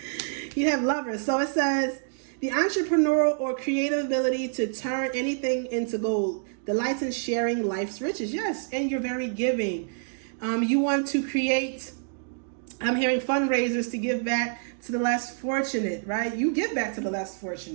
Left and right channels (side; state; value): left; silent; digital silence